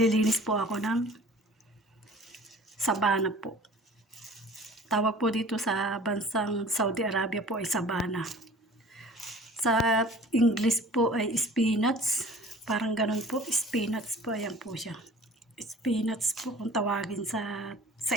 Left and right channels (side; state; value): both; normal; correlation 0.46